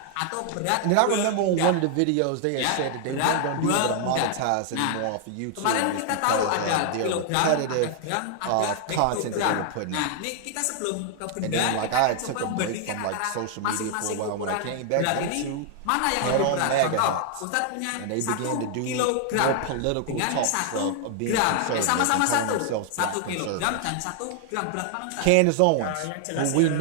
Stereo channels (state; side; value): different; both; correlation 0.00